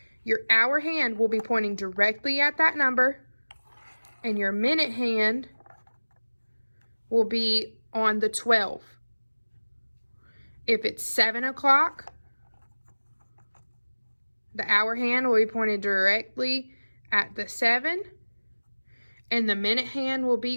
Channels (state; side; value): inverted; both; correlation -1.00